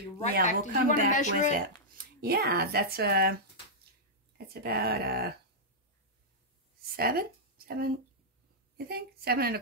right back. We'll Did come you want to back measure with it? Yeah, that's about 7, you think? 7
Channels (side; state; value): both; normal; correlation -0.09